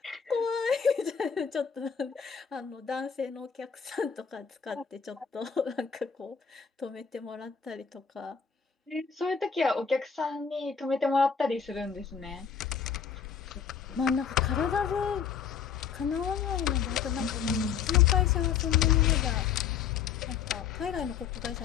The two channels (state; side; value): quieter; right; 7.1 dB